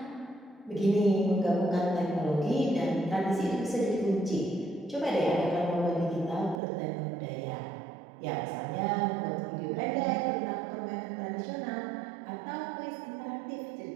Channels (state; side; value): drops out; left; at 6.6 s